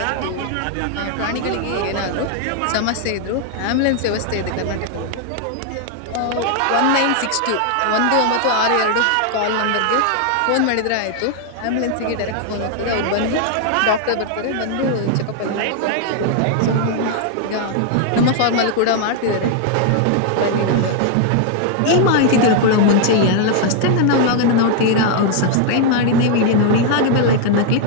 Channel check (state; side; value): different; both; correlation 0.00